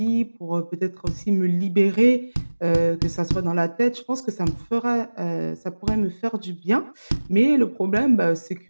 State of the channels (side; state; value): both; inverted; correlation -1.00